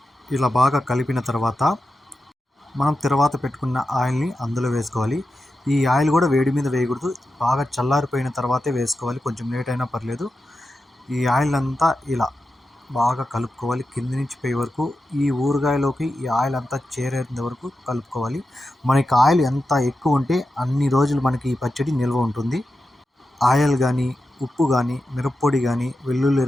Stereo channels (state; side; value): normal; both; correlation 0.90